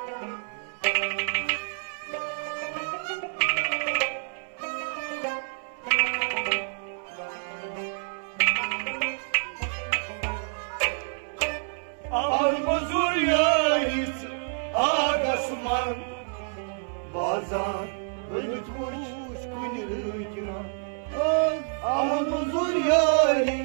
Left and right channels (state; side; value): silent; left; digital silence